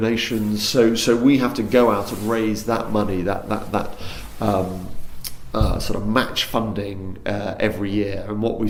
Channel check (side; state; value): both; identical; correlation 1.00